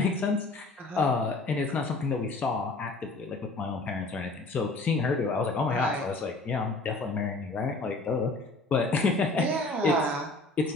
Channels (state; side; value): quieter; right; 3.1 dB